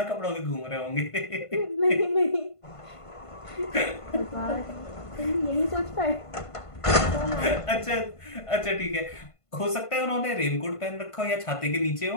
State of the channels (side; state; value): right; late; 1.5 ms